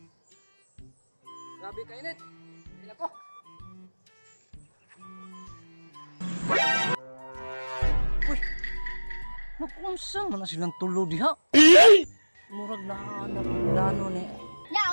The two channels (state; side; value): inverted; both; correlation -1.00